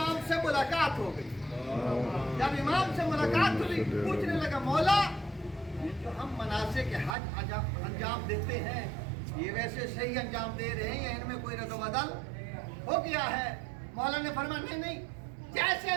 سے ملاقات ہو گئی. جب امام سے ملاقات ہوئی پوچھنے لگا مولا یہ جو ہم مناسک حج انجام دیتے ہیں یہ ویسے صحیح انجام دے رہے ہیں یا ان میں کوئی رد و بدل ہو گیا ہے. مولا نے فرمایا نہیں جیسے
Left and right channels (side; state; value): left; drops out; at 7.2 s